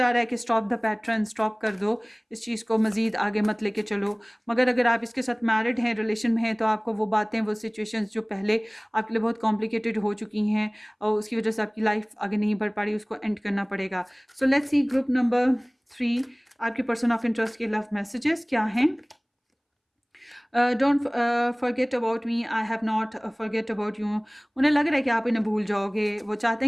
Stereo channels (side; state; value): both; identical; correlation 1.00